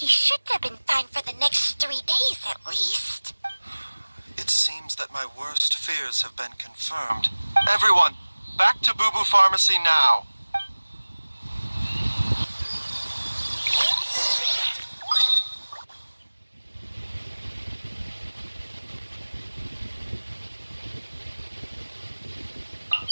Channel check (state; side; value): inverted; both; correlation -1.00